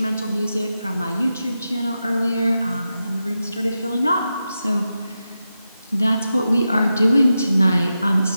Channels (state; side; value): inverted; both; correlation -0.89